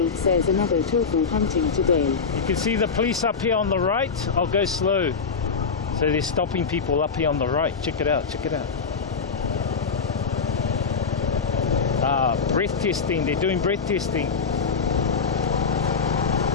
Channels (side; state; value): right; quieter; 5.4 dB